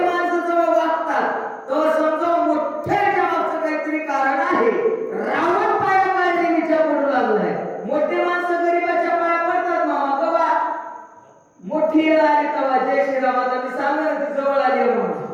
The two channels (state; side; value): identical; both; correlation 1.00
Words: माणसं जेव्हा वागतात तेव्हा समजा मोठ्याच्या मागचं काहीतरी कारण आहे. रावण पाया पाय देवीच्या पडू लागलाय. मोठे माणसं गरीबाच्या पाया पडतात मामा कवा मोठी येळ आली तेव्हा जय श्रीरामाचा मी सांगणार ती जवळ आली